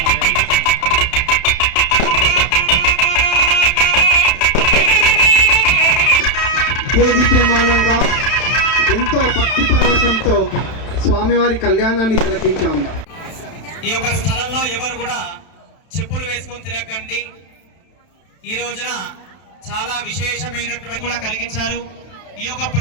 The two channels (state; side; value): late; right; 31 ms